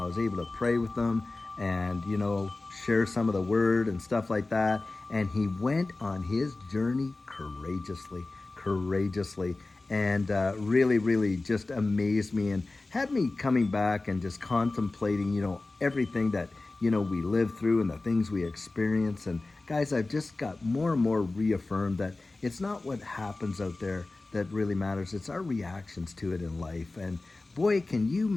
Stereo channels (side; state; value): right; quieter; 3.3 dB